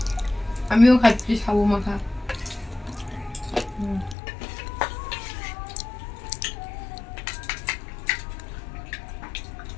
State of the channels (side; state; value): right; drops out; at 4.2 s